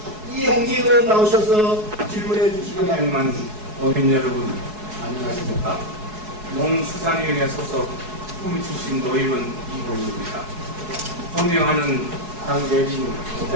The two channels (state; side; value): late; left; 4.7 ms